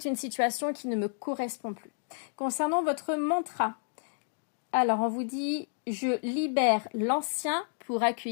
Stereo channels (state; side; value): silent; right; digital silence